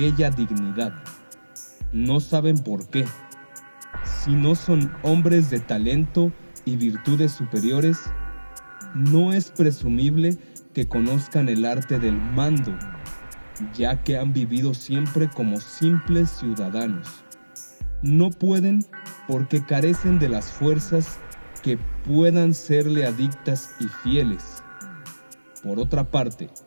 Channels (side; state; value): both; inverted; correlation -1.00